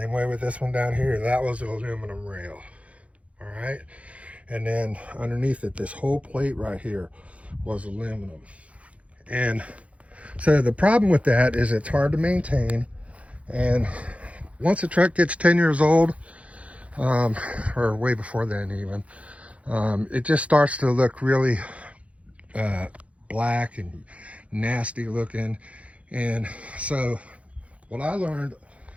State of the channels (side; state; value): left; late; 0.064 ms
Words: way with this one down here. That was an aluminum rail. All right. And then underneath it, this whole plate right here was aluminum. And so the problem with that is it's hard to maintain. And once a truck gets 10 years old, or way before then even, it just starts to look really black and nasty looking. And so what I learned